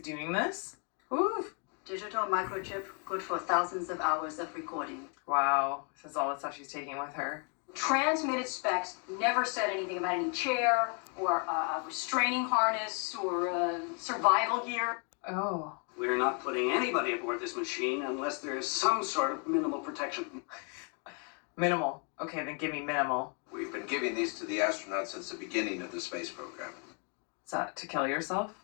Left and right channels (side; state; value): right; quieter; 39.0 dB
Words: doing this? Ooh. Digital microchip, good for thousands of hours of recording. Wow. This is all the stuff she's taking with her. Transmitted specs never said anything about any chair or a restraining harness or survival gear. Oh. We're not putting anybody aboard this machine unless there's some sort of minimal protection. Minimal. Okay, then give me minimal. We've been giving these to the astronauts since the beginning of the space program. Is that to kill yourself?